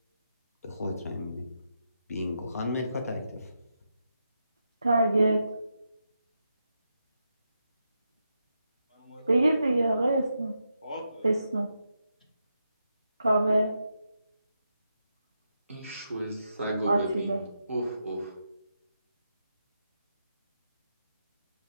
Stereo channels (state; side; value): inverted; both; correlation -0.85